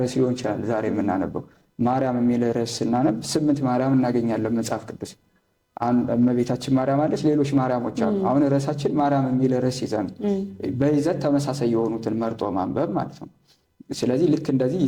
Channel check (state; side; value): identical; both; correlation 1.00